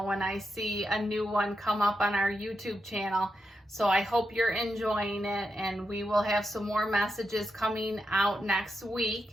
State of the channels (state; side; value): normal; both; correlation 0.86